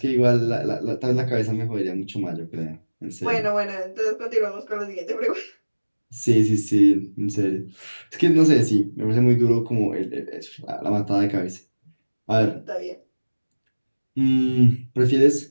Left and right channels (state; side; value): inverted; both; correlation -1.00